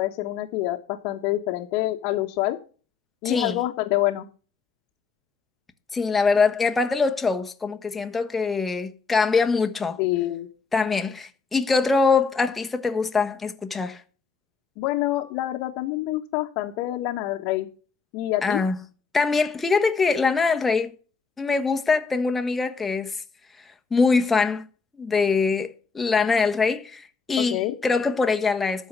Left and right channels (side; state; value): right; quieter; 5.2 dB